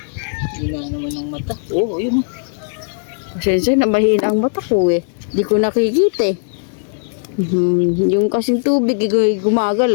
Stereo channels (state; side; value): silent; right; 68 dB below the other